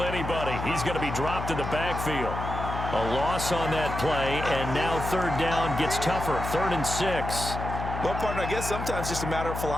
anybody. He's going to be dropped in the backfield. A loss on that play, and now 3rd down gets tougher. 3rd and 6. Well, partner, I guess sometimes just a matter of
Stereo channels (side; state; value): left; noise; hum, 5 dB below the sound